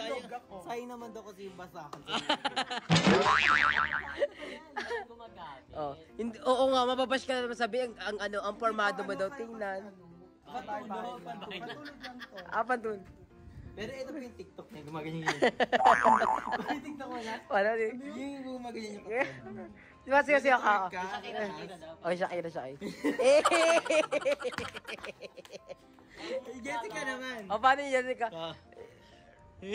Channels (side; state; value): both; identical; correlation 1.00